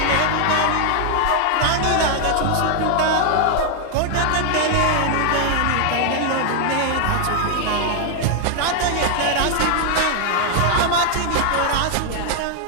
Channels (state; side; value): different; both; correlation 0.00